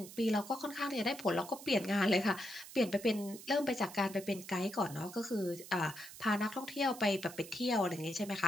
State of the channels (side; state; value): right; noise; hiss, 15 dB below the sound